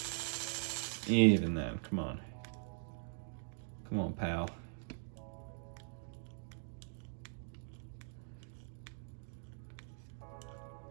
Even then, come on. Come on, pal.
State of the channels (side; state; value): left; silent; digital silence